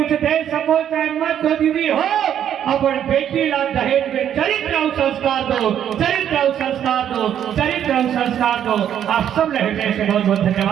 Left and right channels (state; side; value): quieter; left; 9.8 dB